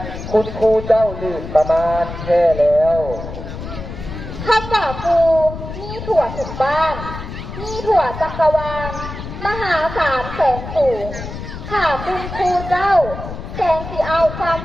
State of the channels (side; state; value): left; noise; rumble, 9 dB below the sound